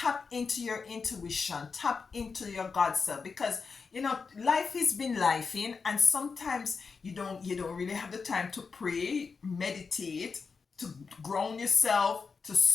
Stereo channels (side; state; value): right; quieter; 5.1 dB